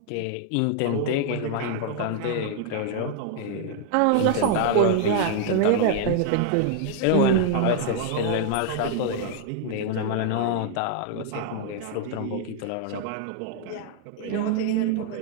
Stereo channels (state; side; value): different; both; correlation 0.00